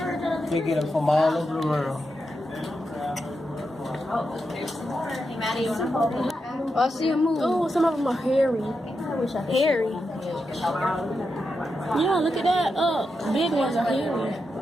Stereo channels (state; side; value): normal; both; correlation 0.87